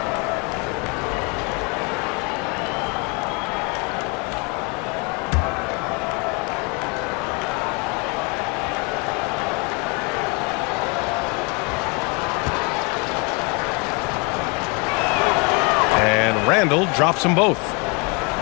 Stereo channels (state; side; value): quieter; right; 31.6 dB